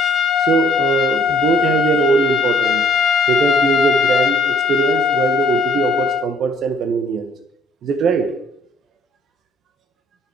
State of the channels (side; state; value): both; normal; correlation 0.61